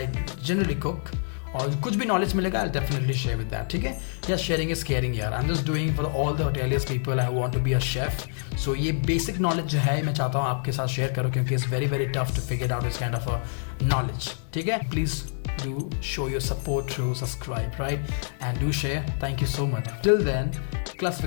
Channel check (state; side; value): silent; right; digital silence